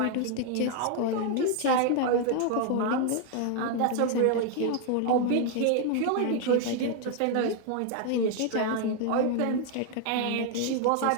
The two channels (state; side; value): different; both; correlation 0.00